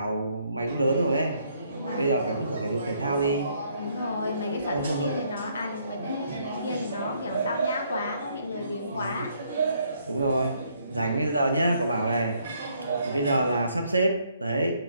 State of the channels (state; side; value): inverted; both; correlation -0.69